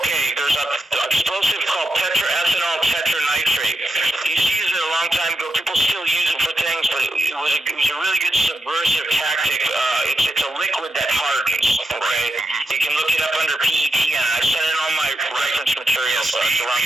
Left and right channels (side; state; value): both; normal; correlation 0.85